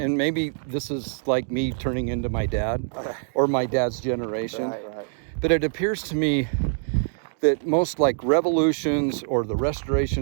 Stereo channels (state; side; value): silent; left; 62 dB below the other